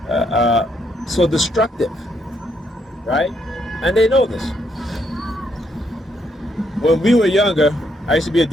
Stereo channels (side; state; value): both; normal; correlation 0.75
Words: So destructive, right? And they know this. When we were younger, I used to be a